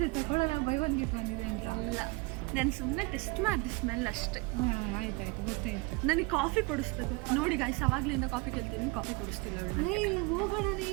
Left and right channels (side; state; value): left; quieter; 26.4 dB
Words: ತಗೊಳ್ಳೋಣ, ಬೈ ಒನ್ ಗೆಟ್ ಒನ್ ಇದೆ ಅಂತ. ಇಲ್ಲ, ನಾನು ಸುಮ್ಮನೆ ಟೆಸ್ಟ್ ಮಾಡಿದೆ ಸ್ಮೆಲ್ ಅಷ್ಟೇ. ಆಯ್ತಾಯ್ತು, ಗೊತ್ತಾಯ್ತು. ನನಗೆ ಕಾಫಿ ಕೊಡಿಸ್ಬೇಕು ನೋಡಿ ಗೈಸ್, ಅವಾಗ್ಲಿಂದ ಕಾಫಿ ಕೇಳ್ತೀನಿ, ಕಾಫಿ ಕೊಡಿಸ್ತಿಲ್ಲ ಅವಳು. ಹೋಗೋಣನೇ,